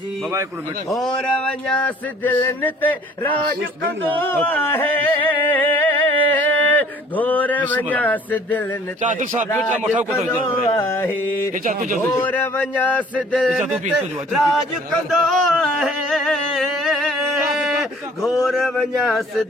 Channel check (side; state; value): both; normal; correlation 0.54